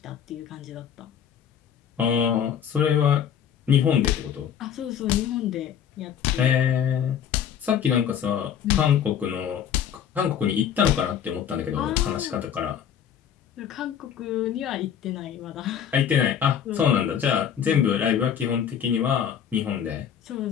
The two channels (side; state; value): right; quieter; 8.8 dB